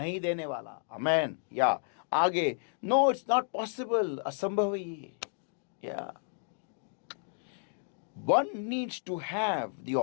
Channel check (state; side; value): silent; right; digital silence